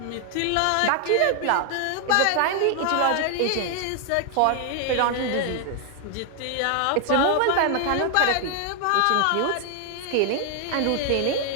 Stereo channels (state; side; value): different; both; correlation 0.00